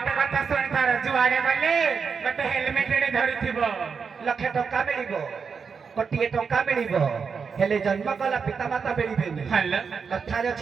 कथा सुनि तार जुआडे गले गोटे हेलमेट रे धरिथिबो लक्षे टका मिलिबो कोटिए टका मिलिबो हेले जन्म कला पिता माता मिलिबेनी हल्ला कथा रे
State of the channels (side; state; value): left; quieter; 5.8 dB